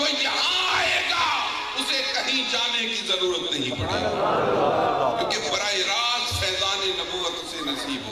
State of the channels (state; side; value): identical; both; correlation 1.00